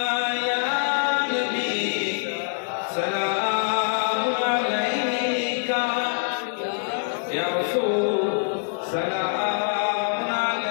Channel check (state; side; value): silent; right; digital silence